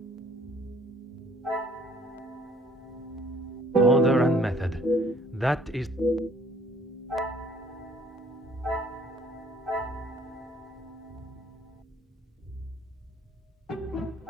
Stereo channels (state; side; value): normal; both; correlation 0.58